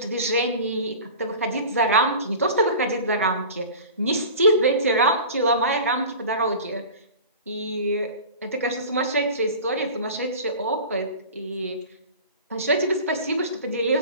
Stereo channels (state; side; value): inverted; both; correlation -0.38